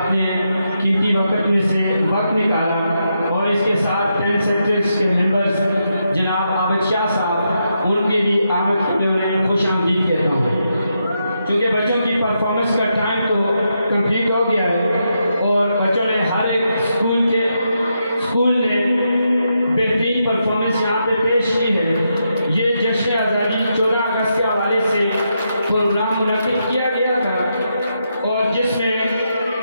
قیمتی وقت میں سے وقت نکالا، اور اس کے ساتھ 10 سیکٹرز کے ممبرز جناب عابد شاہ صاحب، ان کے بھی آمد کے لیے انہیں خوش آمدید کہتا ہوں۔ چونکہ بچوں کی پرفارمنس کا ٹائم تو کمپلیٹ ہو گیا ہے، اور بچوں نے ہر ایک اسکول نے بہترین پرفارمنس یہاں پہ پیش کی ہے۔ یہ جشن آزادی 14 اگست کے حوالے سے پروگرام منعقد کیا گیا تھا، اور جس میں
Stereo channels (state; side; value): inverted; both; correlation -0.83